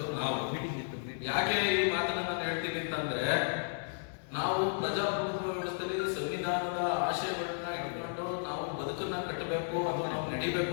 ನಾವು. ಯಾಕೆ ಈ ಮಾತನ್ನು ನಾನು ಹೇಳ್ತೀನಿ ಅಂತ ಏನಂತಂದ್ರೆ, ನಾವು ಪ್ರಜಾಪ್ರಭುತ್ವ ವ್ಯವಸ್ಥೆಯಲ್ಲಿ ಸಂವಿಧಾನದ ಆಶಯಗಳನ್ನ ಇಟ್ಕೊಂಡು ನಾವು ಬದುಕನ್ನ ಕಟ್ಟಬೇಕು ಅಥವಾ ನಾವು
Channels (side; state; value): right; silent; digital silence